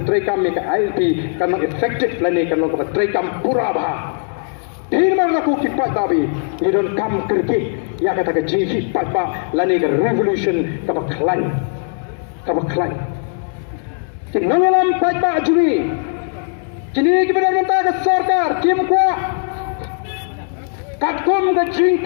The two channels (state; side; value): silent; right; 58 dB below the other